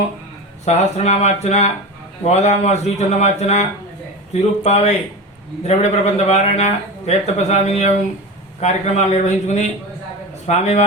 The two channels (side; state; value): both; normal; correlation 0.26